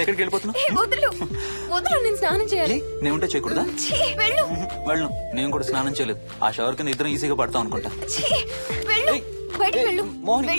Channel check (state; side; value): inverted; both; correlation -1.00